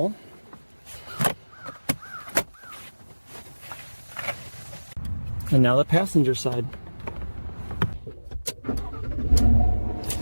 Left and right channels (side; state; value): both; inverted; correlation -1.00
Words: And now the passenger side.